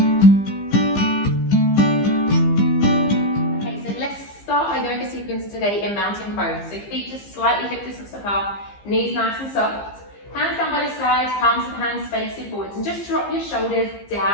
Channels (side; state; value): right; late; 15 ms